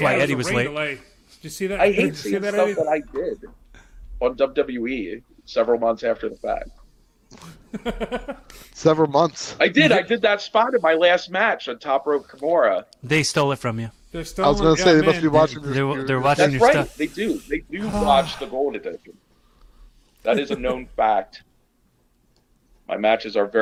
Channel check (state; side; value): identical; both; correlation 1.00